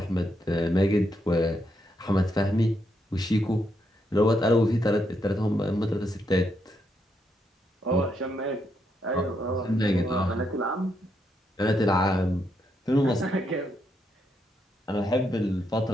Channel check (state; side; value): normal; both; correlation 0.79